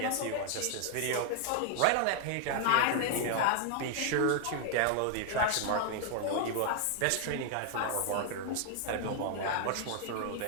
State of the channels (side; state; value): both; different; correlation 0.00